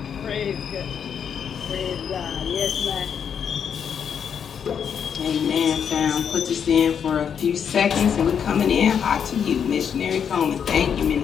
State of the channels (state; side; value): quieter; right; 7.6 dB